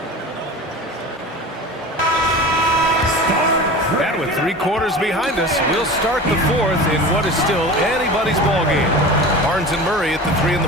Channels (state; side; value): normal; both; correlation 0.34